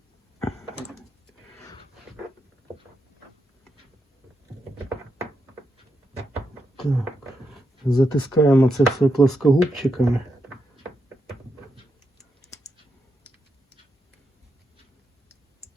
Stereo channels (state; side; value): normal; both; correlation 0.84